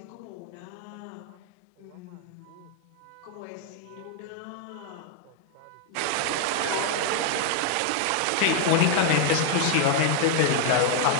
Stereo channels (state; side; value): different; both; correlation 0.00